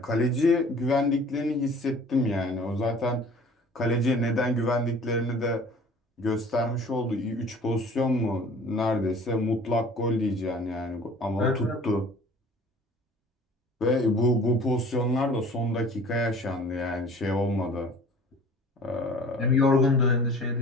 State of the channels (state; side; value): normal; both; correlation 0.48